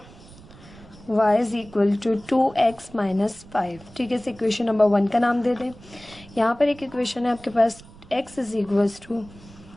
y is equal to 2x minus 5। ठीक है, इस इक्वेशन नंबर 1 का नाम दे दें। यहाँ पर एक इक्वेशन है आपके पास x is equals to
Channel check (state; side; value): noise; right; rumble, 21 dB below the sound